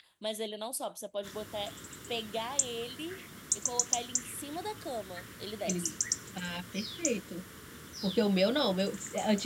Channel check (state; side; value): identical; both; correlation 1.00